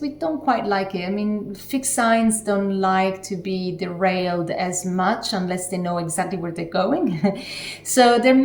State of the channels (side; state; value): both; identical; correlation 1.00